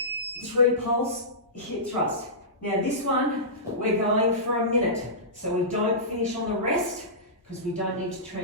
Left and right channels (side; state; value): both; normal; correlation -0.19